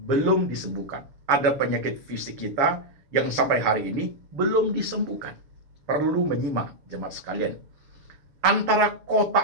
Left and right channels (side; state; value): left; late; 6.8 ms